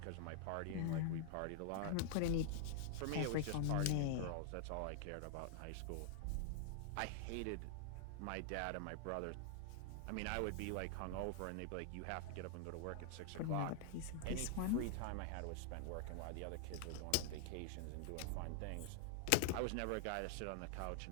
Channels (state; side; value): different; both; correlation 0.00